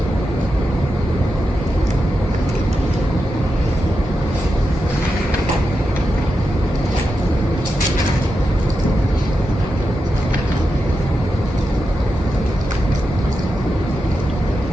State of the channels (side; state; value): both; normal; correlation 0.88